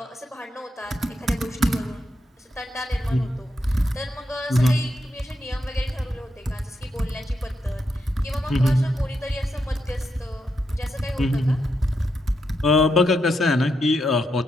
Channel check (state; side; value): normal; both; correlation 0.83